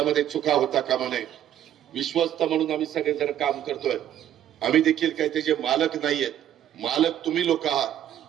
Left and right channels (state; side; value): quieter; left; 11.0 dB